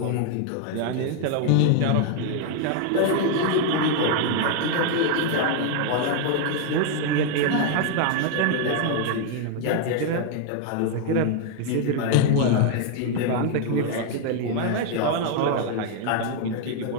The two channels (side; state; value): both; different; correlation 0.00